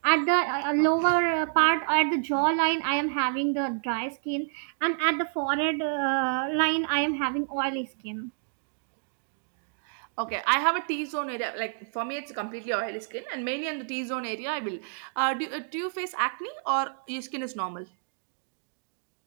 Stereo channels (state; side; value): silent; left; digital silence